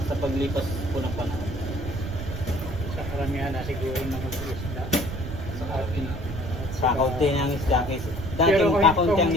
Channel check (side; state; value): right; noise; rumble, 7 dB below the sound